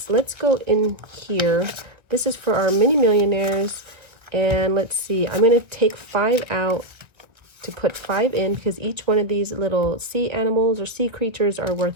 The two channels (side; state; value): left; late; 1.1 ms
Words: Let's go in here. This is for our mini millionaires. And let's see, I'm going to take 5 out to put 5 in because each one of these little sea animals or sea creatures are